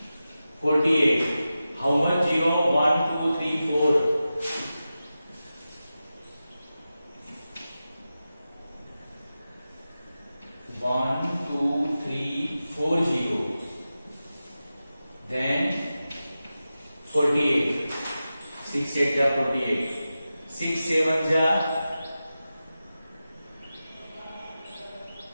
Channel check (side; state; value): both; inverted; correlation -0.93